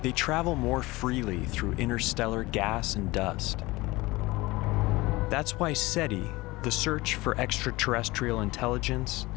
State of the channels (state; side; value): quieter; right; 21.0 dB